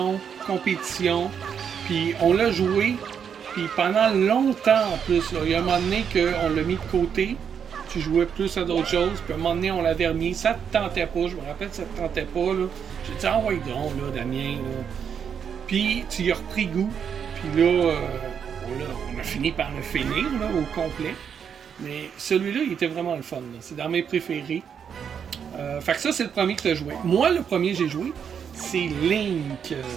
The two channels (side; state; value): left; quieter; 7.5 dB